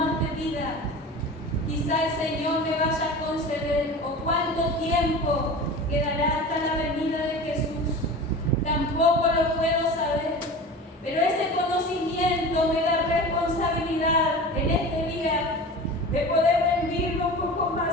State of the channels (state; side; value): normal; both; correlation 0.34